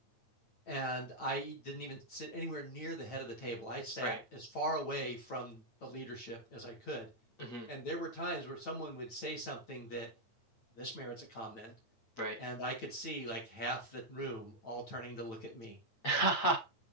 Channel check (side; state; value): right; late; 9.0 ms